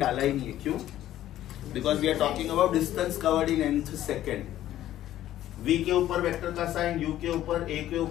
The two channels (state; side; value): quieter; right; 13.0 dB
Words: ही नहीं है. क्यों? Because we are talking about distance covered in nth second. V के ऊपर वेक्टर का साइन, U के ऊपर, A के